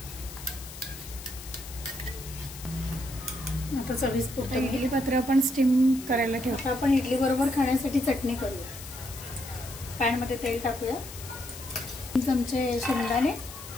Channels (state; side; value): noise; left; hiss, 14 dB below the sound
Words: आता चवीपुरतं इडली पात्र आपण स्टीम करायला ठेवतो। आपण इडली बरोबर खाण्यासाठी चटणी करूया। पॅन मध्ये तेल टाकूया, 3 चमचे शेंगदाणे